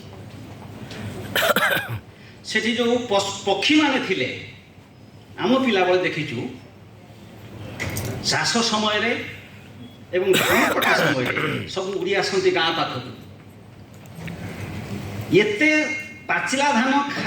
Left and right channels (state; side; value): identical; both; correlation 1.00